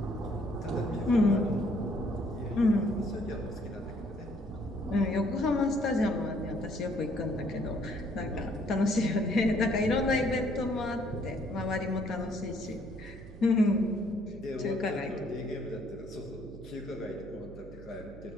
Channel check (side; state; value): right; noise; hum, 16 dB below the sound